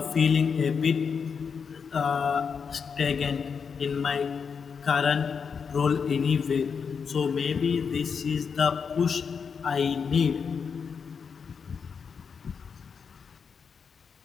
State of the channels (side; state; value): right; quieter; 6.1 dB